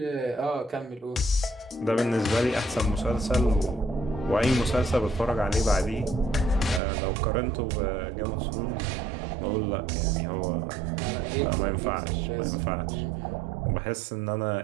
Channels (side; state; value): left; drops out; at 6.8 s